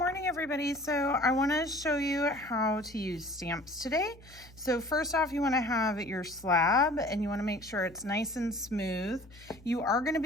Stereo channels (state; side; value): noise; left; hum, 23 dB below the sound